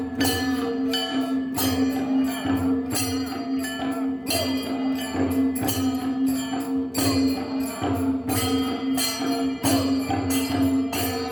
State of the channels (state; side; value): identical; both; correlation 1.00